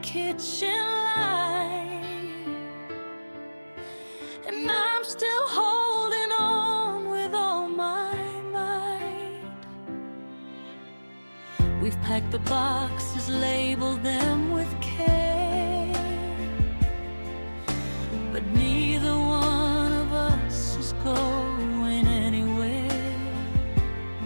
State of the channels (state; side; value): inverted; both; correlation -1.00